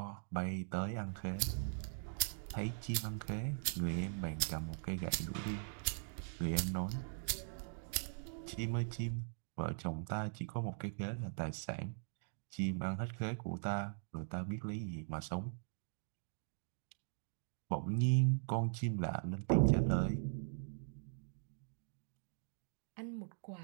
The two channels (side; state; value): left; silent; digital silence